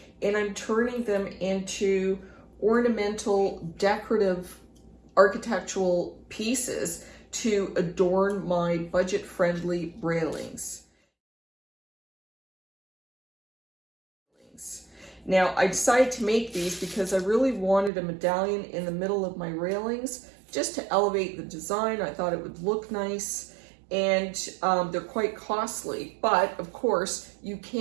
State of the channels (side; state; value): left; drops out; at 17.9 s